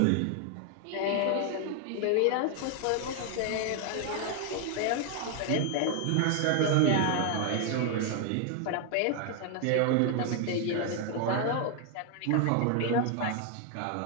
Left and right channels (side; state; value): both; different; correlation 0.00